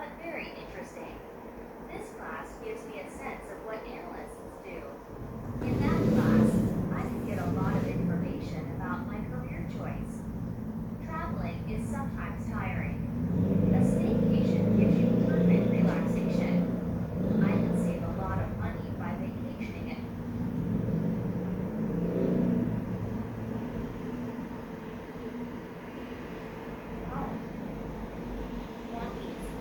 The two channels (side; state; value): both; identical; correlation 1.00